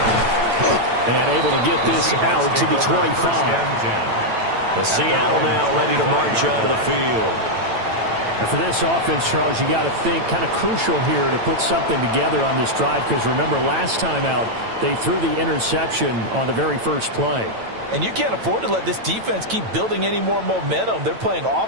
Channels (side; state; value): left; late; 9.0 ms